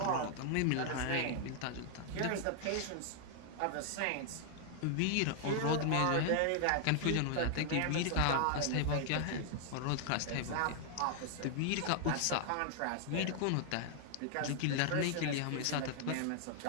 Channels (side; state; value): both; different; correlation 0.00